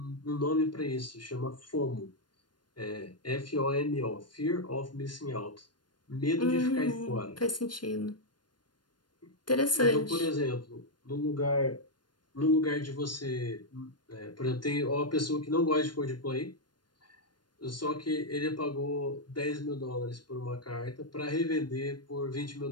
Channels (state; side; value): late; right; 0.71 ms